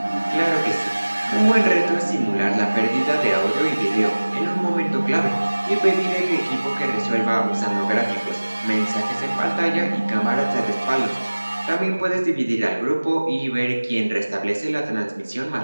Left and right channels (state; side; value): inverted; both; correlation -1.00